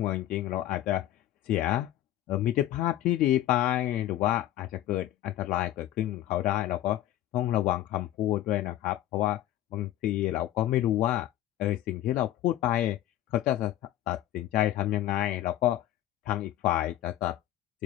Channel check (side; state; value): right; quieter; 13.3 dB